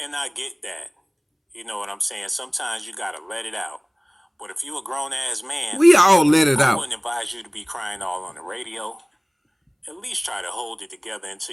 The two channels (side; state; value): both; identical; correlation 1.00